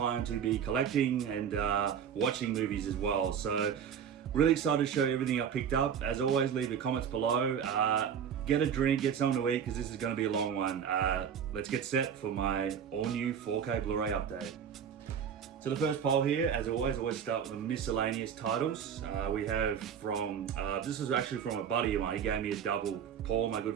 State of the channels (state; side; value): quieter; left; 7.9 dB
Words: to be collecting and watching movies as well. So really excited to show you everything I picked up. As always, leave your comments below. Get a drink, get something to eat, because this is going to be a long one. Let's get set for my all-new 4K Blu-ray update. So the first poll here, as always start with the miscellaneous titles. We have from, this is actually from a buddy of mine. He gave me a double. Paul, my good